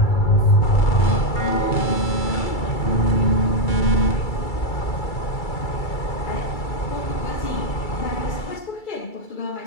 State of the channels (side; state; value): right; late; 2.3 ms